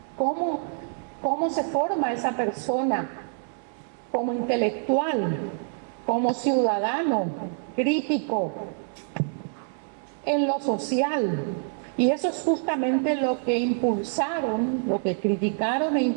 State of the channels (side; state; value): left; silent; 61 dB below the other